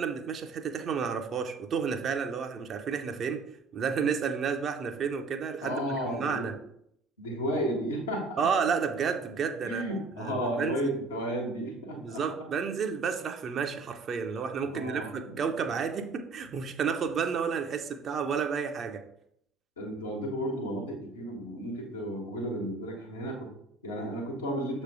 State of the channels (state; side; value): quieter; left; 4.0 dB